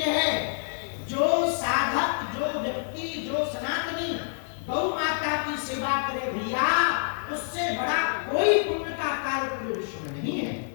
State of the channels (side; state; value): right; silent; digital silence